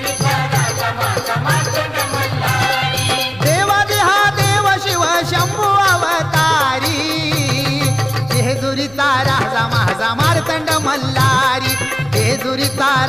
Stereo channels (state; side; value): noise; right; rumble, 23 dB below the sound